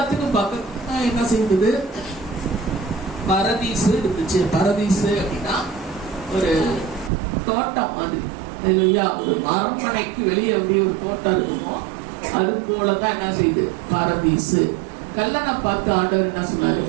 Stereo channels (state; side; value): drops out; left; at 7.1 s